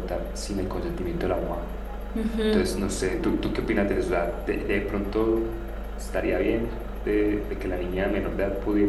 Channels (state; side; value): identical; both; correlation 1.00